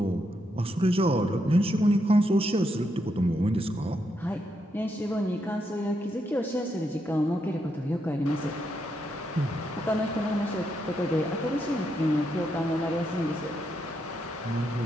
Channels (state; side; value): normal; both; correlation 0.80